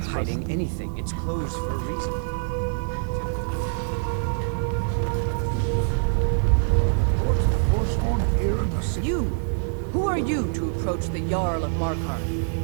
quest. hiding anything. It's closed for a reason. Forsworn here in the city. You! Who are you to approach the Jarl of Markarth?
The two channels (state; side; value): silent; left; digital silence